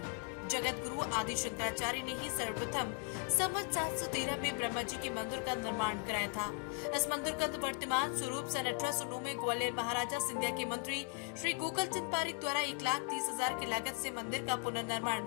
जगत गुरु आदि शंकराचार्य ने ही सर्वप्रथम संवत 713 में ब्रह्मा जी के मंदिर का निर्माण कराया था। इस मंदिर का वर्तमान स्वरूप सन 1809 में ग्वालियर महाराजा सिंधिया के मंत्री श्री गोकलचंद पारीक द्वारा 1,30,000 की लागत से मंदिर का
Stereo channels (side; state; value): right; quieter; 34.2 dB